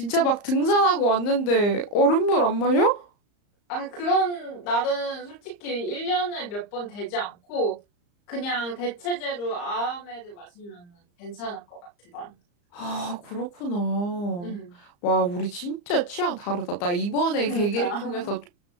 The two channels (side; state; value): right; late; 34 ms